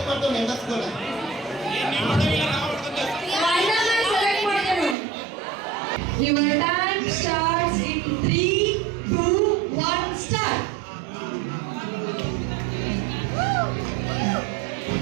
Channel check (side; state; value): left; drops out; at 5.0 s